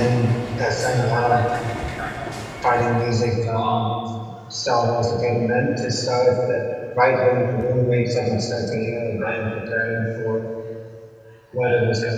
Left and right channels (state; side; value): identical; both; correlation 1.00